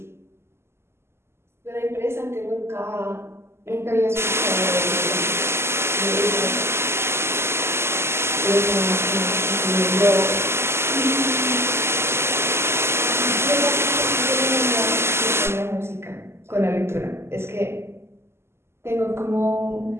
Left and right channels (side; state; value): left; late; 0.12 ms